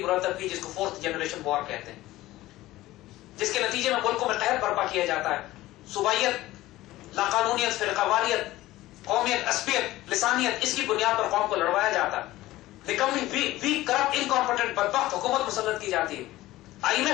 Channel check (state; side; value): quieter; right; 16.8 dB